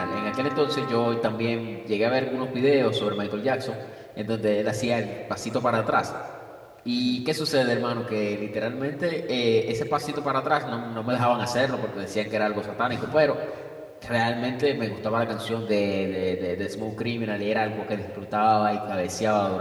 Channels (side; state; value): both; identical; correlation 1.00